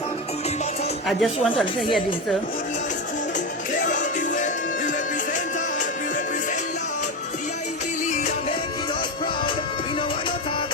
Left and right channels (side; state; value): both; normal; correlation 0.16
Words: I just want to hear this though.